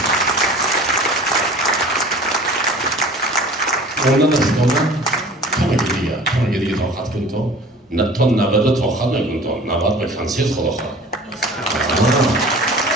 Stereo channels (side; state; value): both; normal; correlation 0.44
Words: اونا نستانم کمه دیگه طاقت کن تو تا 90 طاقت نکن تو 90 به کنسیت خدا خواهد.